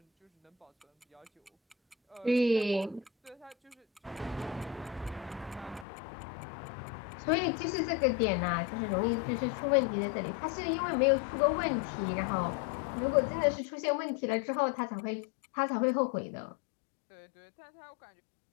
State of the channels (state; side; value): drops out; right; at 5.9 s